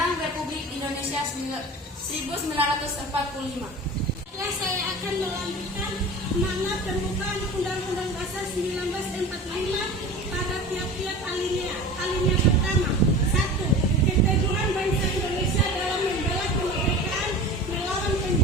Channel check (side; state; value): both; normal; correlation 0.36